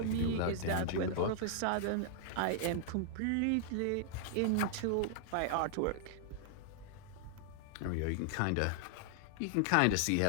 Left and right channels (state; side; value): different; both; correlation -0.01